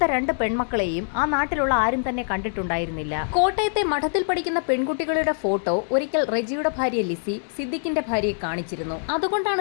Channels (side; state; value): right; silent; digital silence